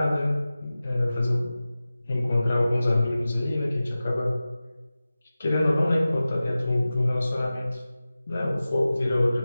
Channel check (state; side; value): inverted; both; correlation -0.96